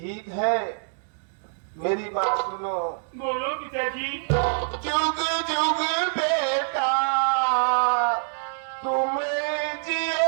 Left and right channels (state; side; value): silent; left; digital silence